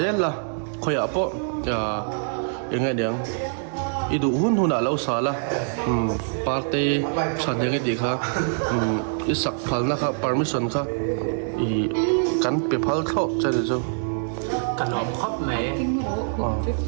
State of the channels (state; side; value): silent; left; digital silence